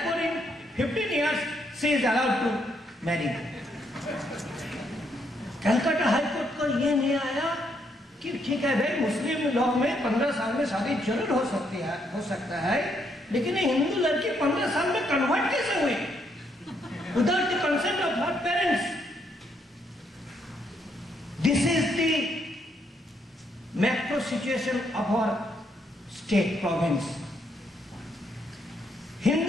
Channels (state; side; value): normal; both; correlation 0.74